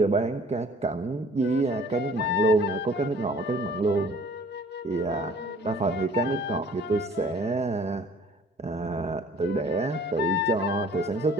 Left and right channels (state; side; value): normal; both; correlation 0.52